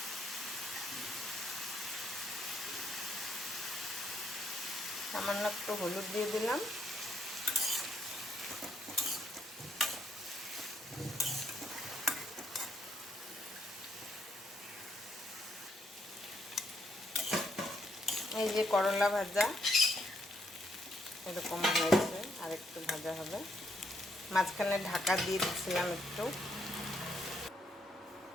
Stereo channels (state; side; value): normal; both; correlation 0.74